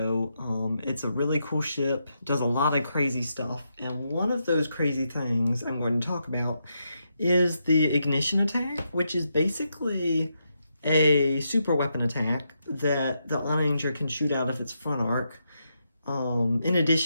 it's a really cool ship, does a lot of crazy stuff, and one of those crazy things I'm going to talk about is the ignition attack, which is basically a super weapon attack that the Onager can shoot out of its front arc, in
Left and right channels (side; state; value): both; inverted; correlation -0.83